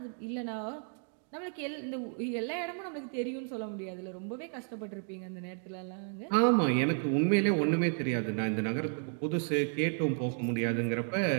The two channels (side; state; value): left; silent; 56 dB below the other